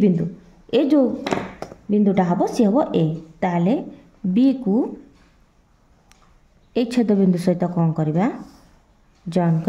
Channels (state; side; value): identical; both; correlation 1.00